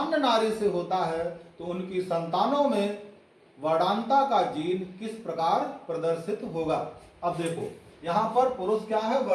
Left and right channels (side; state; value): both; identical; correlation 1.00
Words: नारी से होता है तो उनकी संतानों में वर्णांधता का जीन किस प्रकार प्रदर्शित होगा? अब देखो, यहाँ पर पुरुष क्या है?